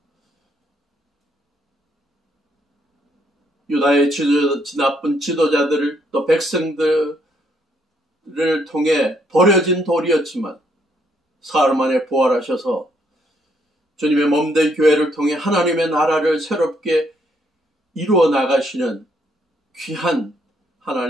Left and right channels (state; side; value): normal; both; correlation 0.71